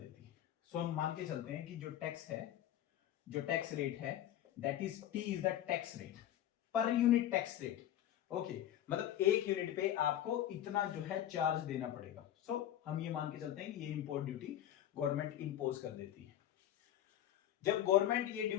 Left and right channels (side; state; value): right; quieter; 11.9 dB